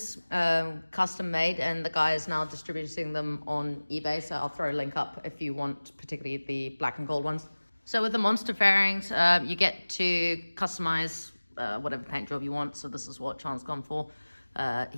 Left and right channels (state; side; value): inverted; both; correlation -1.00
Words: custom made, and the guy is now distributing them on eBay, so I'll throw a link up if you want particularly the black and gold ones. So with the Monster fairings, you get to customize whatever paint job you want, so this is what Sean's gone for.